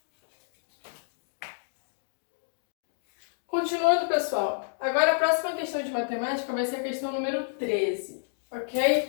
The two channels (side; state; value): right; silent; digital silence